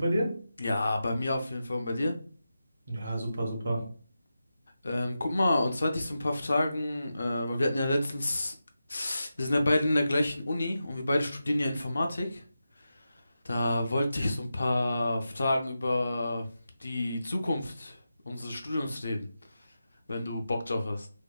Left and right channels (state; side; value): inverted; both; correlation -0.90